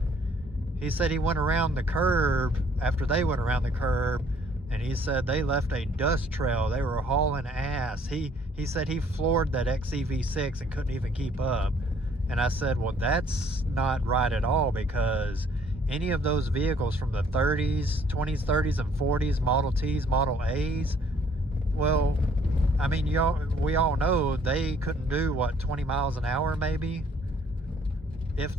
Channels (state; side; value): normal; both; correlation 0.61